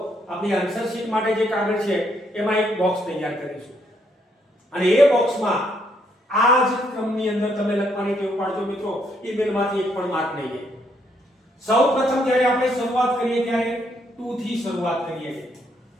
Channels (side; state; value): both; normal; correlation 0.73